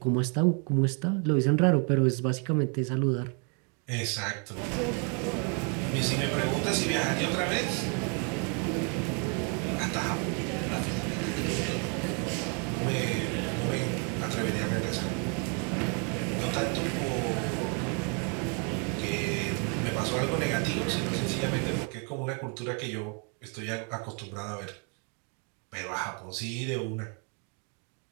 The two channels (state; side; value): quieter; left; 37.2 dB